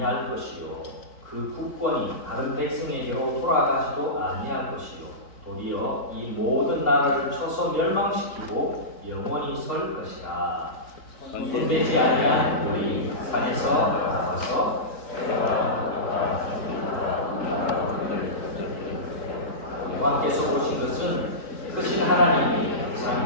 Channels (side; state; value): right; late; 3.7 ms